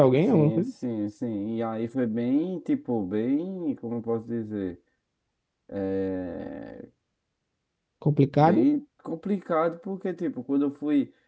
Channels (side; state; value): both; identical; correlation 1.00